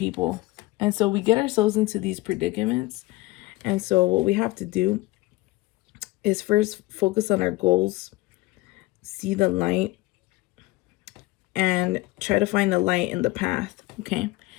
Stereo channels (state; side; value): quieter; right; 20.0 dB